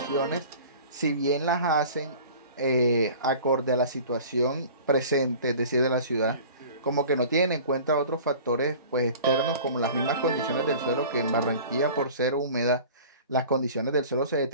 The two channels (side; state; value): both; inverted; correlation -0.43